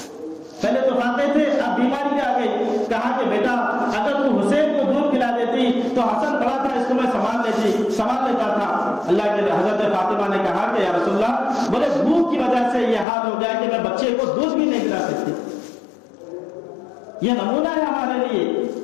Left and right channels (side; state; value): right; drops out; at 13.1 s